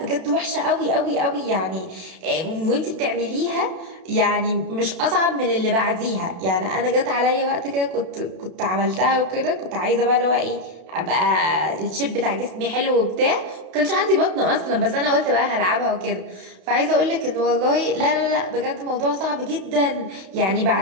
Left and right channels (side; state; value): left; late; 32 ms